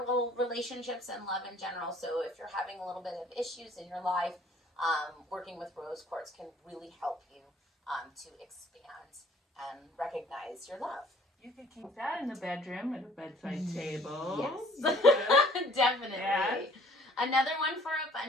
relationships and love in general. So if you're having a little bit of issues in your life, working with rose quartz can really help you to expand and recognize your love. You could keep that in the bedroom at a bedside table. Yes. Definitely. Yes. Another one for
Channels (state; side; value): normal; both; correlation 0.55